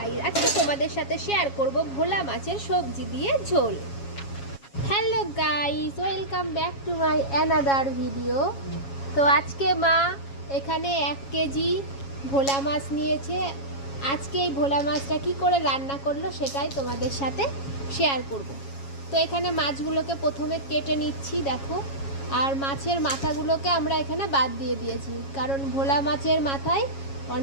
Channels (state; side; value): late; right; 7.3 ms